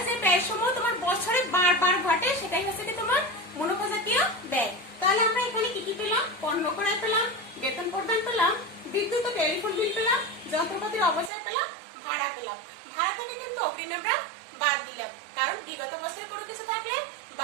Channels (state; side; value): drops out; left; at 11.3 s